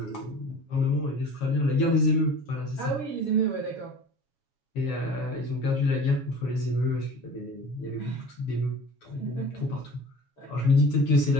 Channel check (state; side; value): late; right; 7.2 ms